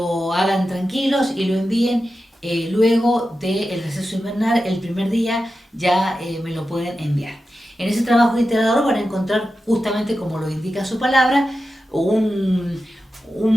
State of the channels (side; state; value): both; normal; correlation 0.91